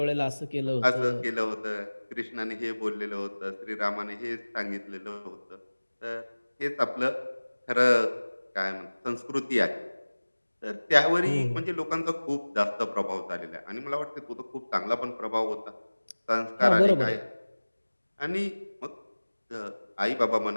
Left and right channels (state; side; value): inverted; both; correlation -1.00